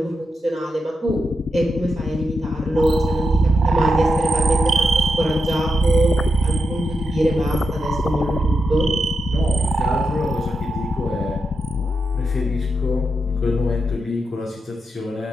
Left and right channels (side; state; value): both; normal; correlation 0.86